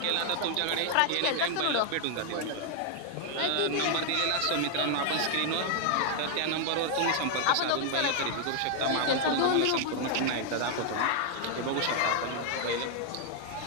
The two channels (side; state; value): both; different; correlation 0.00